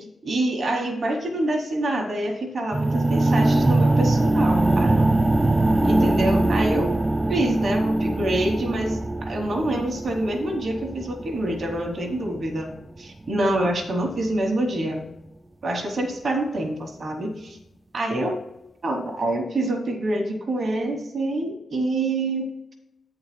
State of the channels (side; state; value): both; normal; correlation 0.90